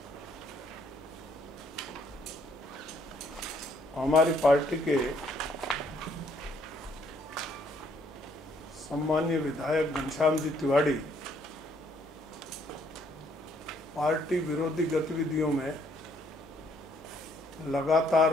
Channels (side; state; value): both; normal; correlation 0.67